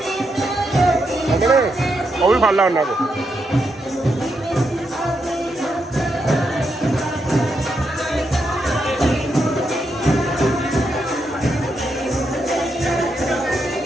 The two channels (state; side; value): normal; both; correlation 0.82